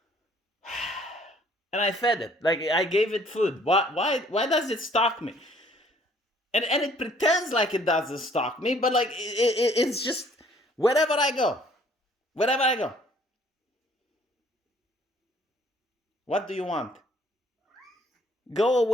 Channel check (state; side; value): normal; both; correlation 0.59